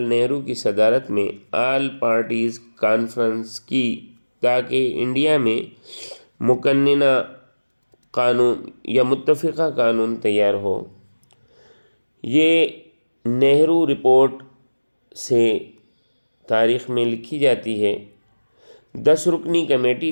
نہرو کی صدارت میں آل پارٹیز کانفرنس کی تاکہ انڈیا میں مقننہ قانون یا متفقہ قانون تیار ہو۔ یہ نہرو رپورٹ سے تاریخ میں لکھی جاتی ہے۔ 10 رکنی کمیٹی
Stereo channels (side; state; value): both; inverted; correlation -1.00